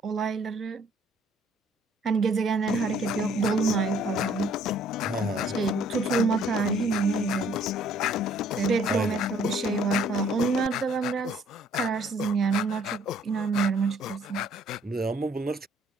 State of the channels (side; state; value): both; normal; correlation 0.60